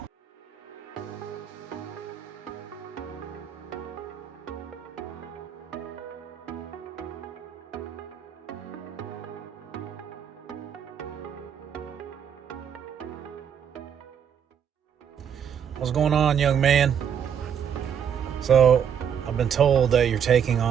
What's going on, young man? So, I've been told that you're taking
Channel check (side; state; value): left; quieter; 8.2 dB